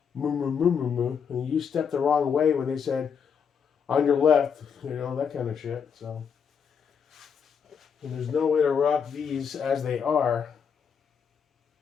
moo, moo, moo, moo, moo. And you stepped the wrong way when they said, on your left, you know, that kind of shit. So, and there's no way to rock these as they are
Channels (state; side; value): quieter; right; 6.9 dB